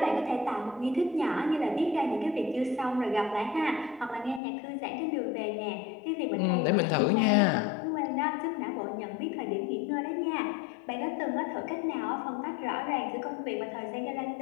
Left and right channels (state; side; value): drops out; right; at 4.4 s